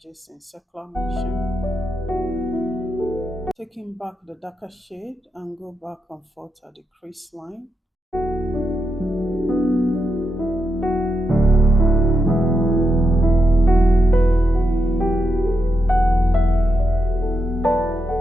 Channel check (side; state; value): both; normal; correlation 0.85